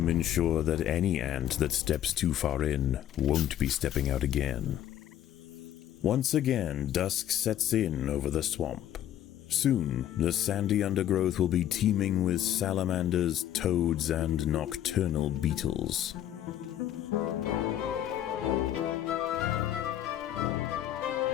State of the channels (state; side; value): quieter; right; 11.4 dB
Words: ensure that any ant that steps too far in won't be stepping out again. Once again, dusk sets in over the swamp. Soon, the sandy undergrowth will be teeming with salamanders, toads, and nocturnal beetles.